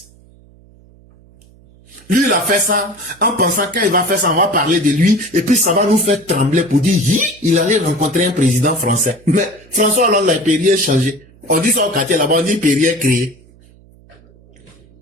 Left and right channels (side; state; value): right; noise; hum, 27 dB below the sound